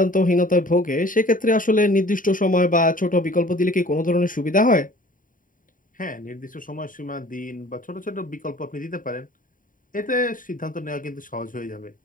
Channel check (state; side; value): late; right; 0.39 ms